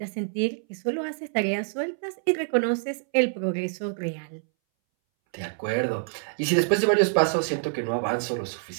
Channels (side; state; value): left; silent; 61 dB below the other